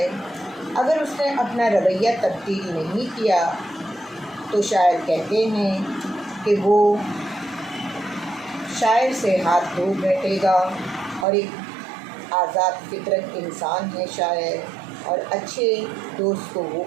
اگر اس نے اپنا رویہ تبدیل نہیں کیا تو شاعر کہتے ہیں کہ وہ شاعر سے ہاتھ دھو بیٹھے گا، اور ایک آزاد فطرت انسان ہے شاعر، اور اچھے دوست کو وہ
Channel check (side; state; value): left; drops out; at 11.2 s